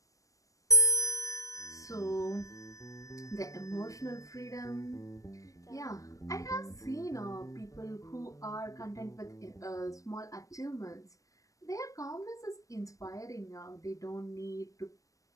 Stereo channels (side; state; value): right; late; 0.16 ms